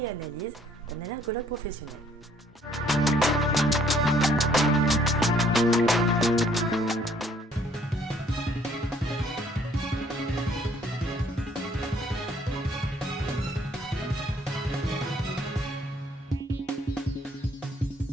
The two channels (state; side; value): normal; both; correlation 0.63